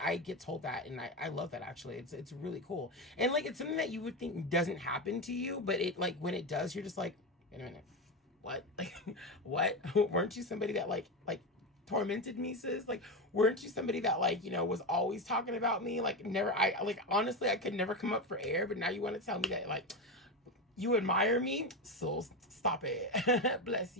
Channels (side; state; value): both; normal; correlation 0.16